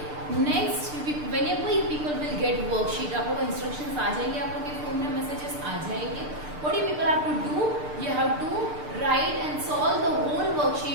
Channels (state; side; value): late; left; 6.7 ms